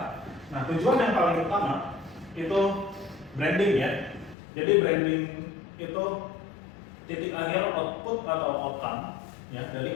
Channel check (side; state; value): right; drops out; at 4.4 s